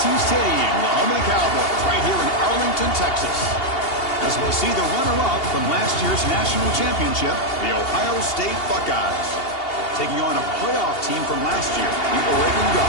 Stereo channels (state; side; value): late; right; 2.8 ms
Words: Stadium, the home of the Cowboys, right here in Arlington, Texas. As we'll see the runner-up from last year's national championship, the Ohio State Buckeyes, taking on a playoff team from last year, the Oregon